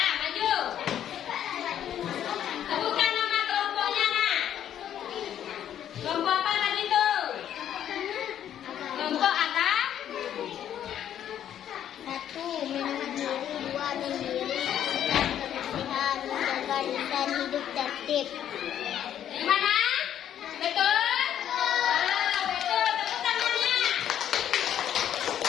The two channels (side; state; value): right; quieter; 10.3 dB